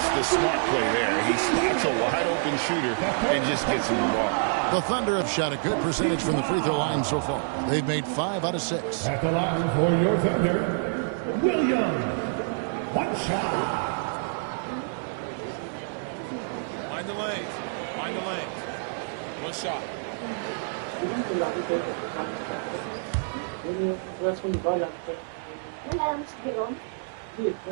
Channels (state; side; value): silent; left; 60 dB below the other